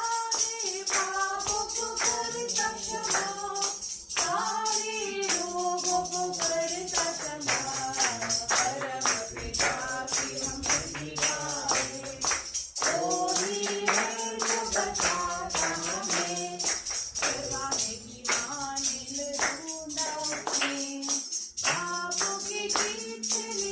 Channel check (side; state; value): both; identical; correlation 1.00